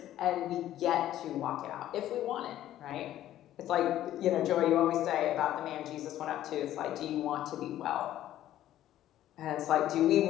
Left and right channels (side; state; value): right; quieter; 12.8 dB